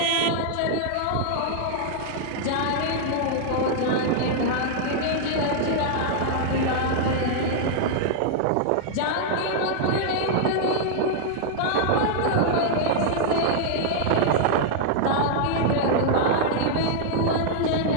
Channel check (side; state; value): both; different; correlation -0.01